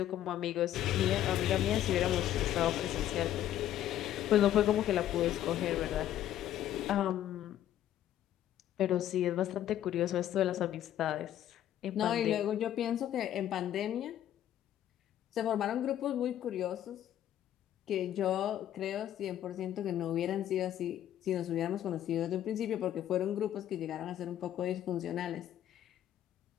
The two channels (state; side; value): quieter; right; 11.8 dB